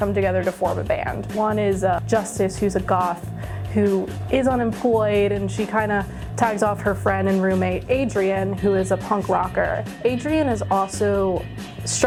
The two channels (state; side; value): identical; both; correlation 1.00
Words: together to form a band. One is Justice, who's a goth who is unemployed, and she kind of tags off her friend and roommate Adrian, who is a punk rocker. Adrian is also